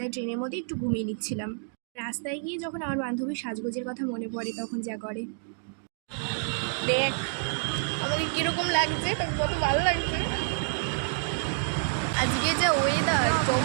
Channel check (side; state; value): left; silent; digital silence